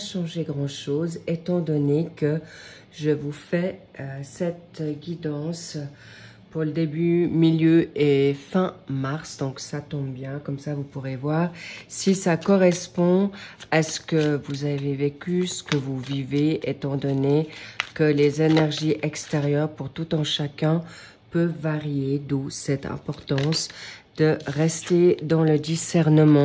grand-chose étant donné que je vous fais cette guidance pour le début, milieu et fin mars. Donc ça tombe bien, comme ça vous pourrez voir si ça correspond à ce que vous avez vécu, ce que vous vivez, étant donné que les énergies extérieures pour tout un chacun peuvent varier, d'où cette importance de rester dans le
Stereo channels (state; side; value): identical; both; correlation 1.00